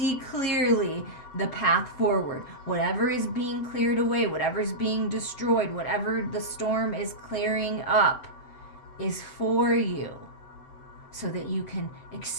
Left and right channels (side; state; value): right; late; 7.9 ms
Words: clearly the path forward. Whatever is being cleared away, whatever is being destroyed, whatever the storm is clearing up is for you, so that you can